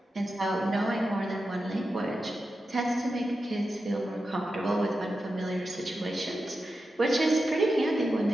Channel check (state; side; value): normal; both; correlation 0.90